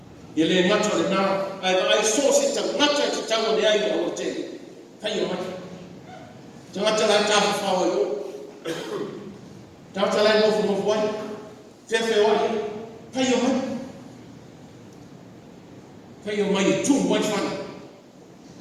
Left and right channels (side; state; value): both; identical; correlation 1.00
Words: Yele macho le now, I saw it to macho to tell the eye of the day. Pay your money. To macho la tafu fawo yo. Tafu la no from one. Tefe one. Pay your money. Pay your money too much fun.